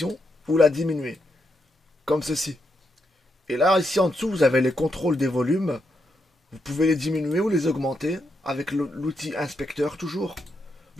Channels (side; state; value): both; normal; correlation 0.82